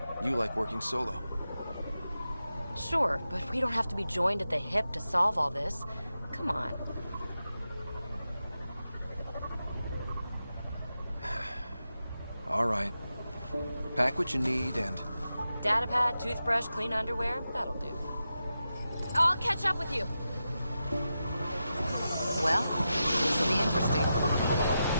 You like working solo. Sure, but we don't have to be joined at the hip to solve all this. Come on. All right. Pack what you need and... Datapad, toothbrush, clean underwear, that'll do. I'll catch up with you. Well, this will be interesting.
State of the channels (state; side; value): inverted; both; correlation -0.90